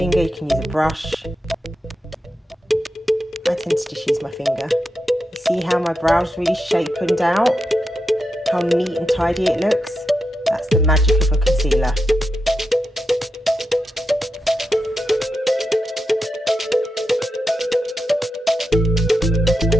you can use a brush. I tend to just use my finger. You see how my brows really shapened out? How neat and tidy it looks? That's the magic of a concealer.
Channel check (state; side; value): normal; both; correlation 0.87